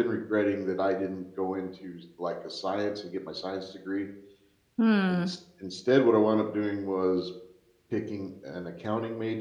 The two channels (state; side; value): identical; both; correlation 1.00